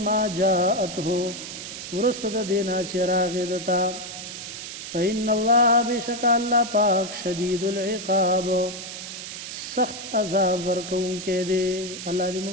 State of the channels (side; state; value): right; noise; hiss, 9 dB below the sound